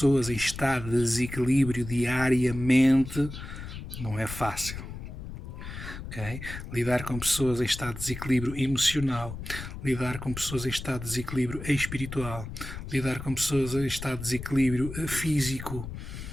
em estado de desequilíbrio diariamente não é fácil. Okay? Lidar com pessoas em estado de desequilíbrio emocional, lidar com pessoas em estado de desequilíbrio espiritual, lidar com pessoas em estado de desequilíbrio físico,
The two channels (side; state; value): left; noise; rumble, 10 dB below the sound